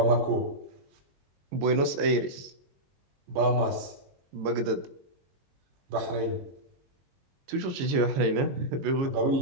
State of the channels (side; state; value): left; late; 22 ms